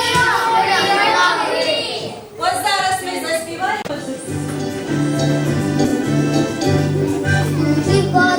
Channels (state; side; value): identical; both; correlation 1.00